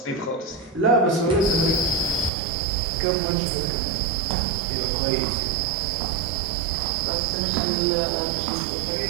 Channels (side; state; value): left; drops out; at 2.3 s